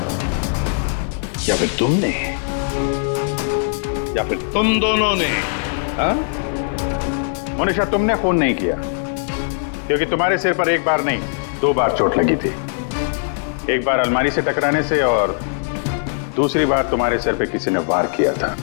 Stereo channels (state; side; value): silent; right; digital silence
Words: या फिर तुमने या फिर तुम दोनों ने? हाँ? मोनिशा, तुमने खून नहीं किया क्योंकि तुम्हारे सिर पर एक बार नहीं 2 बार चोट लगी थी। एक बार अलमारी से टकराने से और दूसरी बार तुम्हारे सिर पे किसी ने वार किया था।